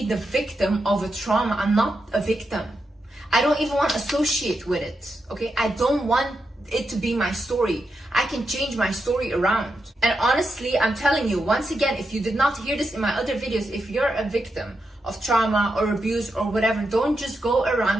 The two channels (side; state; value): both; normal; correlation 0.86